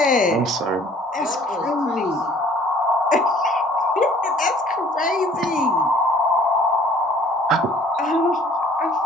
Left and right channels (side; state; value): both; normal; correlation 0.55